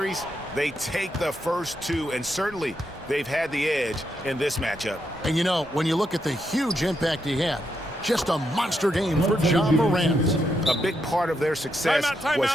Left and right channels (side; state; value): both; normal; correlation 0.81